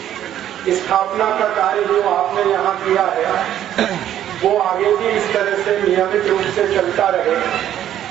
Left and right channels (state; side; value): quieter; left; 11.3 dB